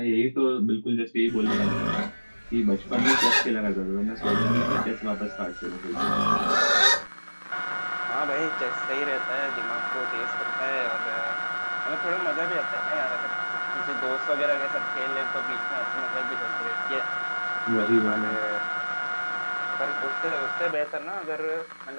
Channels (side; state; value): both; inverted; correlation -1.00